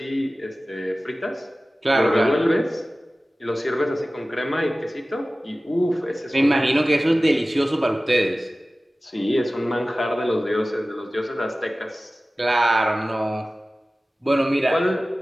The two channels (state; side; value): normal; both; correlation 0.97